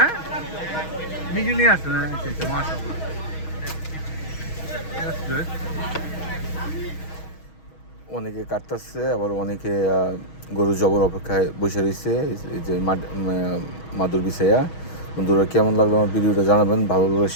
মিজু নিয়ে আসছেন? আচ্ছা আচ্ছা, মাশাআল্লাহ। That's good. অনেকে কাটতেছে, আবার অনেকে গরু জবর অপেক্ষায় বসে রয়েছে। এই যে মাদুর বিছাইয়া। বন্ধুরা, কেমন লাগলো আমার ভিডিওটা জানাবেন, ভালো লাগলে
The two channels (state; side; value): late; right; 6.3 ms